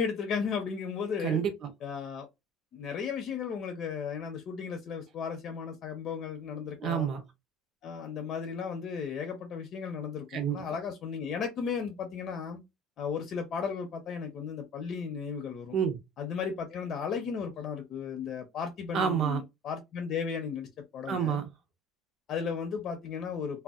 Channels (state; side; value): normal; both; correlation 0.44